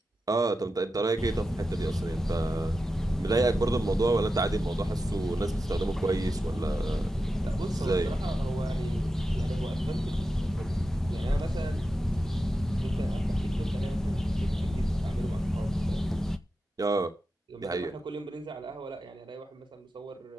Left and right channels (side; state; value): both; normal; correlation 0.90